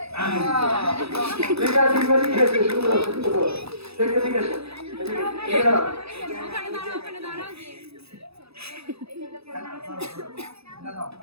ঠিক আছে, ঠিক আছে, ঠিক আছে।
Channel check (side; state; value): left; late; 0.78 ms